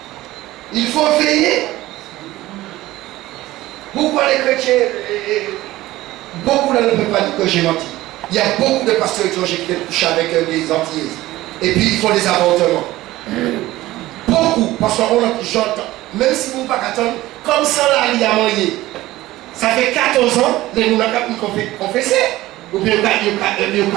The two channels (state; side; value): quieter; left; 16.9 dB